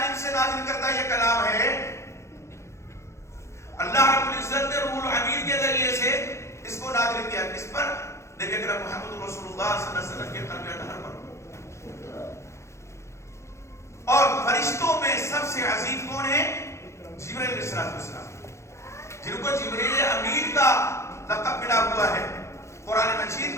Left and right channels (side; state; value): right; late; 0.14 ms